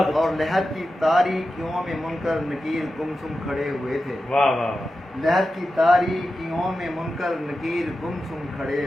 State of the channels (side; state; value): both; normal; correlation 0.92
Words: اور لہر کی تاریکیوں میں منکر نکیر گمسم کھڑے ہوئے تھے، واہ واہ واہ لہر کی تاریکیوں میں منکر نکیر گمسم کھڑے